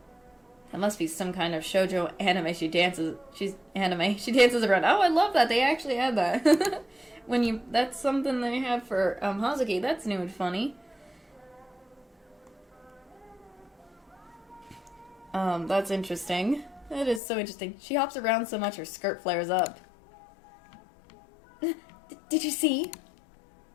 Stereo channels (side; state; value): right; drops out; at 17.2 s